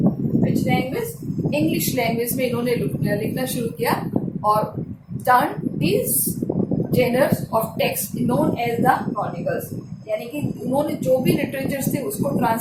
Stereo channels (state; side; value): identical; both; correlation 1.00